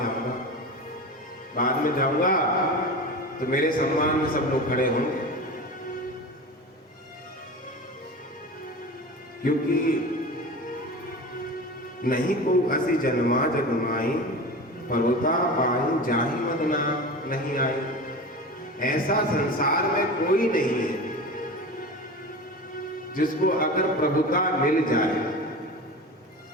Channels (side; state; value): both; normal; correlation 0.31